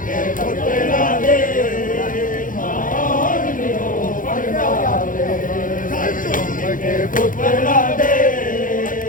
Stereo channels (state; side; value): late; right; 0.39 ms